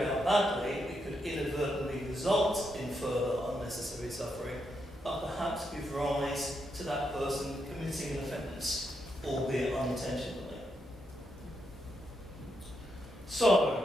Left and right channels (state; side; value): normal; both; correlation 0.81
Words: out badly, it could inadvertently result in further unnecessary suffering, and perhaps give rise to that person committing an offence, albeit unintentionally.